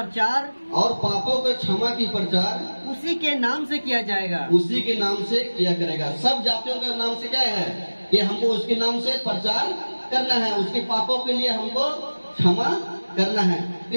और पापों के क्षमा की प्रचार उसी के नाम से किया जाएगा। उसी के नाम से किया करेगा। सब जातियों के नाम से क्या है कि हमको उसके नाम से प्रचार करना है, उसके पापों के लिए हमको क्षमा करना है। तो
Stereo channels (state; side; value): inverted; both; correlation -1.00